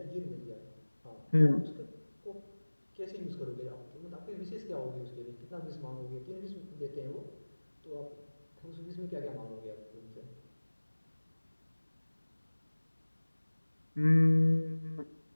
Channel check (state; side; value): inverted; both; correlation -1.00